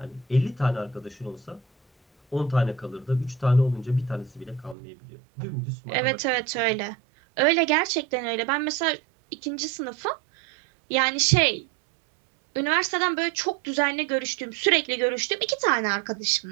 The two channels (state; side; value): drops out; left; at 4.8 s